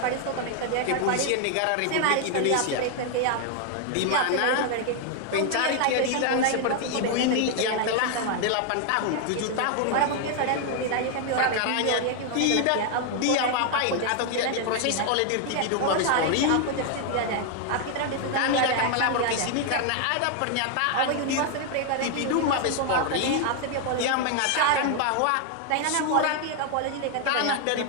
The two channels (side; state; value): both; different; correlation 0.00